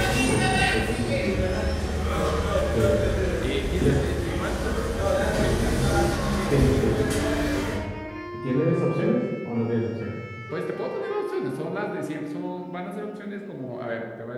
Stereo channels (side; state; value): both; identical; correlation 1.00